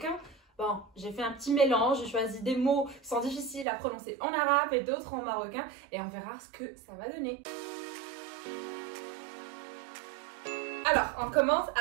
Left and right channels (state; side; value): drops out; left; at 3.7 s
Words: Bon, j'ai fait un petit mélange, j'ai choisi des mots qui sont difficiles à prononcer en arabe et d'autres en marocain, et on verra ce que ça va donner. Alors, on commence